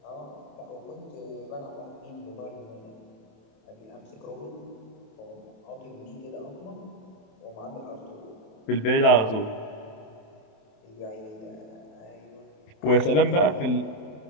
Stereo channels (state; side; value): late; right; 28 ms